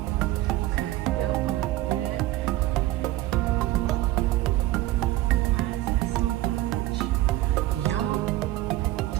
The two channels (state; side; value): quieter; left; 16.2 dB